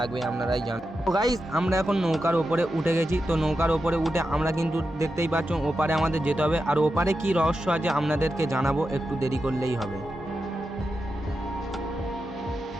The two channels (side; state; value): both; normal; correlation 0.89